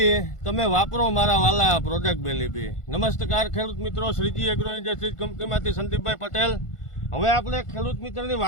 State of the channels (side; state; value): right; late; 1.5 ms